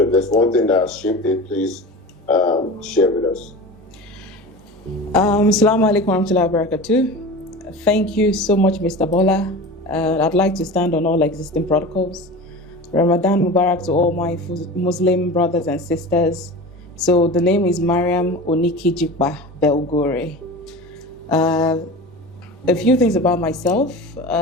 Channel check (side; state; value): both; normal; correlation 0.33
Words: if there's one thing that has shaped it, please share with us. Assalamu alaikum warahmatullahi wabarakatuh. Thank you so much, Mr. Bola. I'd like to stand on all existing protocols. Ramadan Mubarak to all my Muslim brothers and sisters. So the name is Mariam Onikijikpa Belgore. A few things about myself.